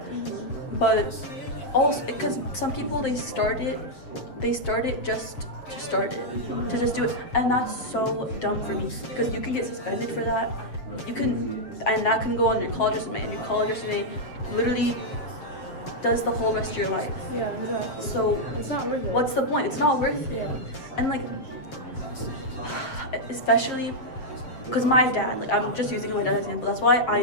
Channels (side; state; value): right; late; 7.7 ms